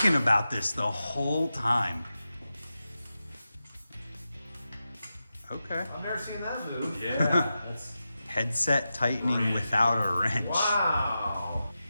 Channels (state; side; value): inverted; both; correlation -0.91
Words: about this the whole time. Okay. I've never seen that move. Yeah, that's Headset tightening without a wrench. Wow.